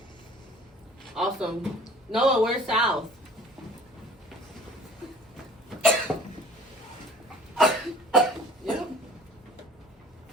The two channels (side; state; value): both; normal; correlation 0.50